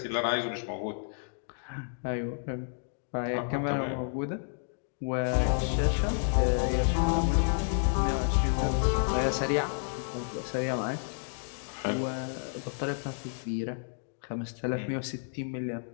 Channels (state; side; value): silent; right; digital silence